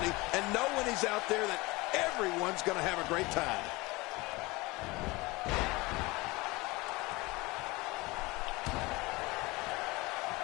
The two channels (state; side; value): quieter; right; 23.0 dB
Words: and know when he's out there that everyone's going to have a great time.